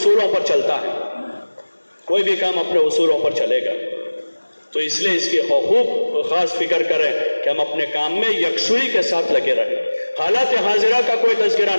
پر چلتا ہے، کوئی بھی کام اپنے اصولوں پر چلے گا، تو اس لیے اس کی خوب خاص فکر کریں کہ ہم اپنے کام میں یکسوئی کے ساتھ لگے رہیں، حالات حاضرہ کا کوئی تذکرہ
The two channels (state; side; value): inverted; both; correlation -1.00